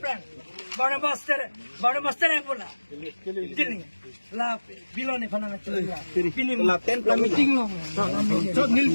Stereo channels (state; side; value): inverted; both; correlation -1.00